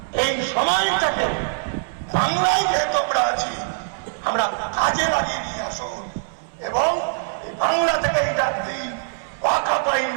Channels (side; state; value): left; silent; 64 dB below the other